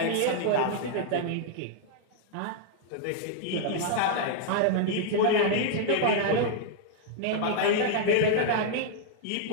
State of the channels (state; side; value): different; both; correlation -0.01